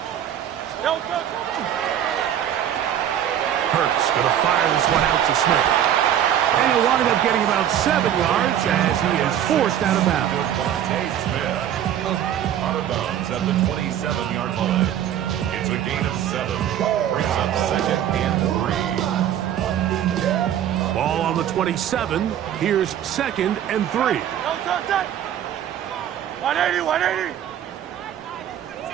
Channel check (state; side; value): quieter; left; 10.4 dB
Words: Don't touch it. Hurts going to fire this one out to Smith. And he'll wind up getting about 7 yards as he is forced out of bounds. Out of bounds at the 27-yard line. It's a gain of 7. Brings up 2nd and 3. Ball on the 27. Here's 2nd and 3. Don't touch it. 180, 180.